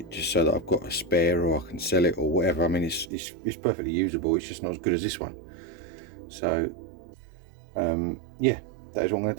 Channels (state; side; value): drops out; left; at 3.1 s